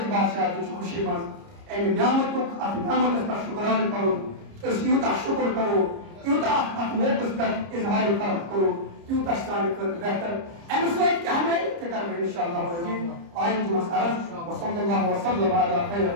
بادشاہ تیچ خوشی مز ایم نعمت کو ات نعمت اس پر شکران کرو اس یوتا شکر کرو یوتا ات موقس پر اظہار فرق کرو یوتا شسانی کر بہتر ایم سوید کہ ہمیں تکر میں انشاءاللہ عزیز آئین جو مسئلہ وصلی اللہ وسلم علی خیر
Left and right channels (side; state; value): left; late; 30 ms